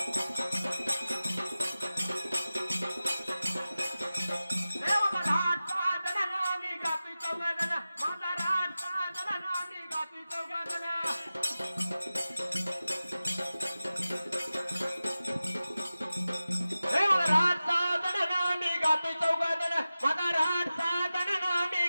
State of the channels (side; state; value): both; inverted; correlation -0.95